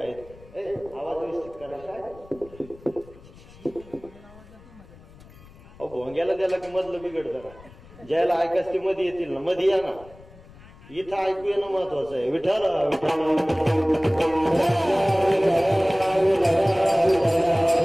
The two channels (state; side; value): noise; left; rumble, 22 dB below the sound